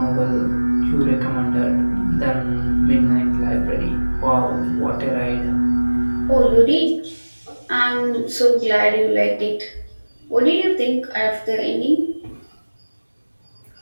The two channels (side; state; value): both; inverted; correlation -1.00